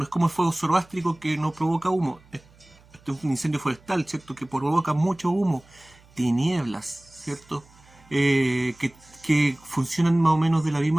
es como el fuego zoroástrico que no provoca humo. Este es un incendio forestal, ¿cierto? Que provoca mucho humo, tinieblas, ¿cierto? Que funcionan más o menos de la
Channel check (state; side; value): noise; right; hum, 28 dB below the sound